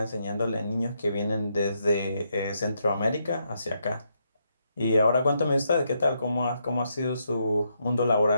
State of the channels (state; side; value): inverted; both; correlation -0.78